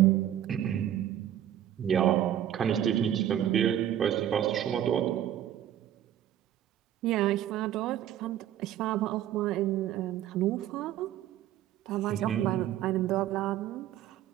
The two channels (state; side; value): quieter; left; 11.4 dB